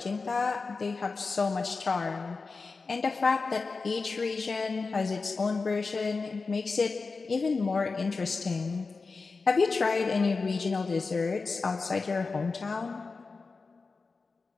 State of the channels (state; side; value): quieter; right; 4.2 dB